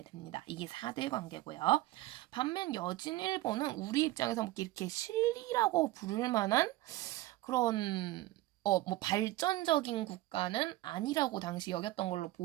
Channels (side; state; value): left; quieter; 17.3 dB